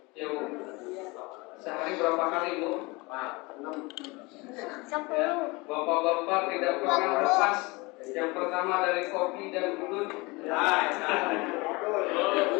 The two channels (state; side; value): quieter; right; 25.2 dB